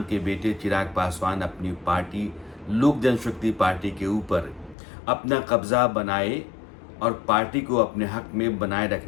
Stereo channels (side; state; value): right; drops out; at 4.8 s